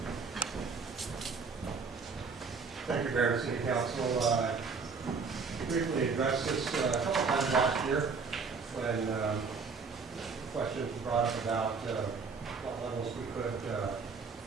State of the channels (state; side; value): quieter; left; 4.9 dB